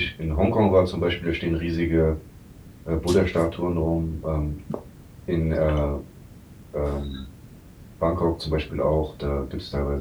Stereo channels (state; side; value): identical; both; correlation 1.00